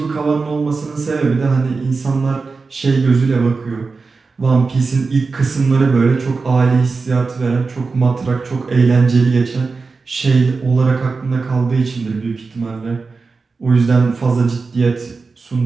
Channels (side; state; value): left; quieter; 4.3 dB